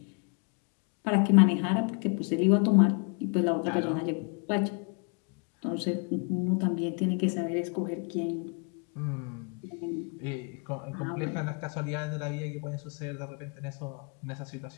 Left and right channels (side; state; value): right; quieter; 38.0 dB